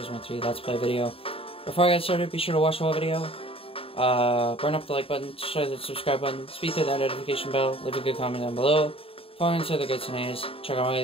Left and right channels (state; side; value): late; right; 0.27 ms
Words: 3 Let's Play video. Before I get started, be sure to watch the whole video. Burn up the like button, share the subscribe button, speed through that notification bell, leave a good comment down below. Follow into the goods and A's. Check out my